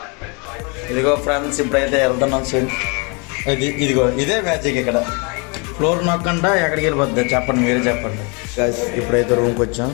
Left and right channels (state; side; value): quieter; right; 32.2 dB